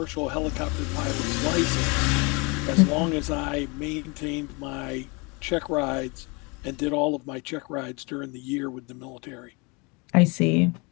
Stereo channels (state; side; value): quieter; right; 29.3 dB